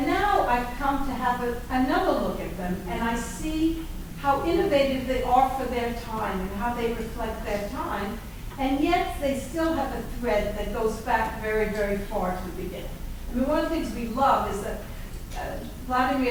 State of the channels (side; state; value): both; identical; correlation 1.00